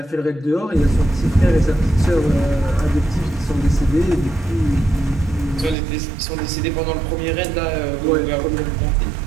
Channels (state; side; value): drops out; left; at 5.8 s